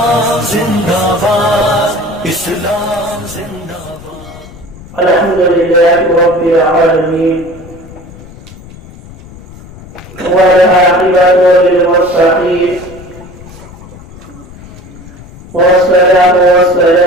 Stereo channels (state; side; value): noise; left; rumble, 18 dB below the sound